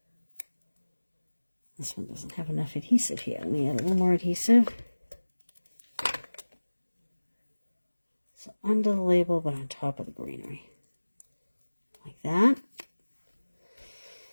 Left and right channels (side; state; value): both; inverted; correlation -1.00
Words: This one doesn't have enough adhesive here. Let me add a little more adhesive. So under the label, but on top of the greenery. Like that.